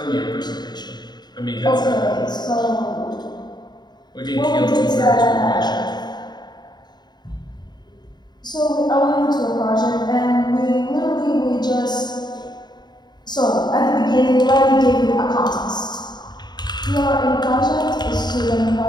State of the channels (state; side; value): late; right; 0.21 ms